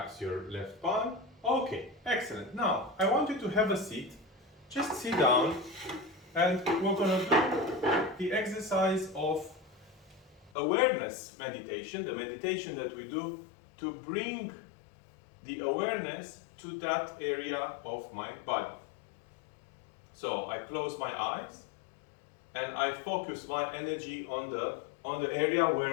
your left palm. Okay, excellent. Now, I want you to have a seat. Just sit down and we're going to do the exercise of awareness meditation, the meditation that we do to bring the awareness to that area of my body. So I close my eyes and I focus my energy on the area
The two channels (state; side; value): drops out; right; at 10.5 s